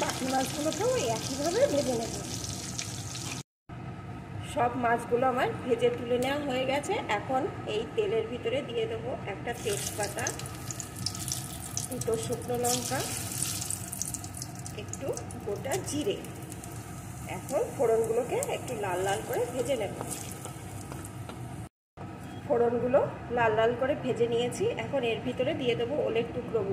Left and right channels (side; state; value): both; identical; correlation 1.00